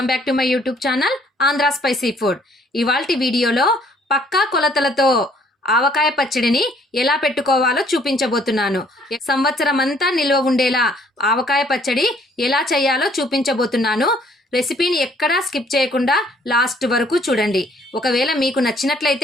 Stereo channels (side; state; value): both; normal; correlation 0.61